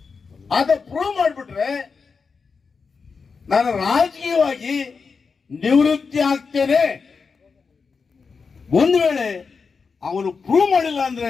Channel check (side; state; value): right; quieter; 5.1 dB